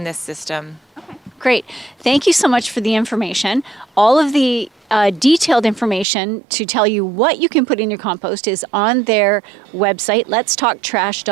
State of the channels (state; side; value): drops out; left; at 6.1 s